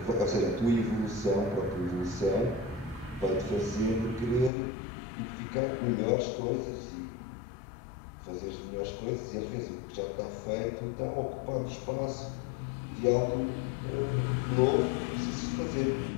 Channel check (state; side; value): drops out; right; at 4.5 s